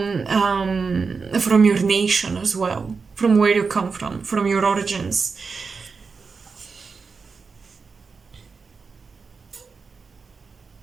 your nation as well, from where you come from your origins.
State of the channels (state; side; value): quieter; left; 4.9 dB